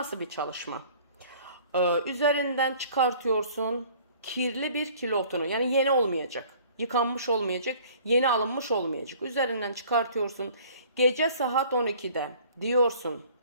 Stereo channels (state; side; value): inverted; both; correlation -0.52